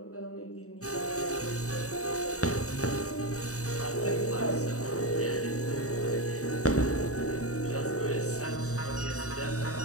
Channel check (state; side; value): late; right; 0.65 ms